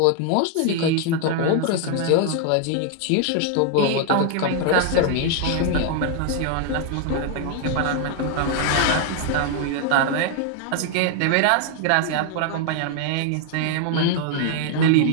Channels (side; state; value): both; different; correlation 0.00